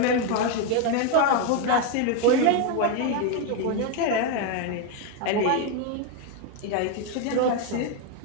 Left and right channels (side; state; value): both; different; correlation 0.02